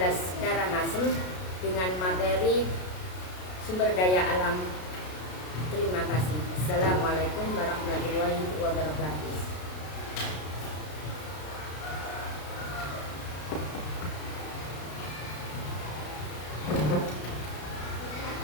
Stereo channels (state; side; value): late; right; 33 ms